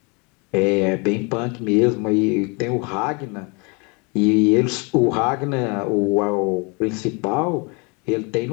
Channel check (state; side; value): quieter; right; 31.2 dB